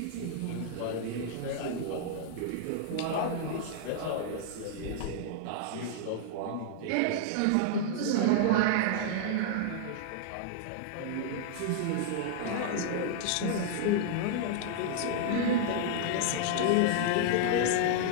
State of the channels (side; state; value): both; different; correlation -0.01